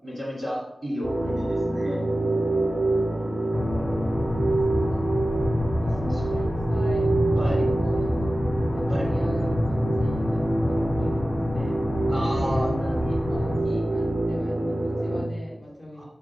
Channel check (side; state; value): both; normal; correlation 0.95